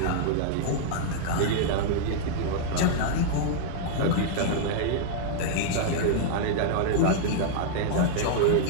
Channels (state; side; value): different; both; correlation -0.01